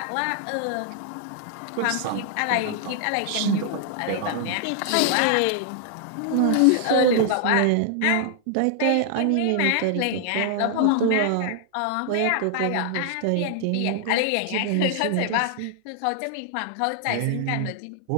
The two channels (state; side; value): different; both; correlation 0.00